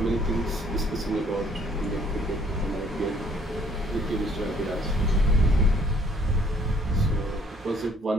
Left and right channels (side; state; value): both; normal; correlation 0.61